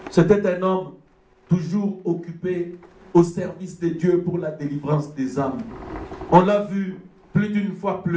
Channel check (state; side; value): identical; both; correlation 1.00